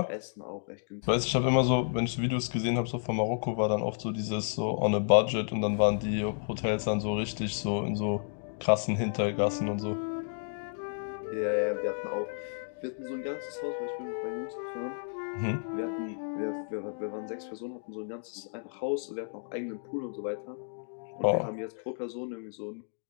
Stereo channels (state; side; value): silent; right; digital silence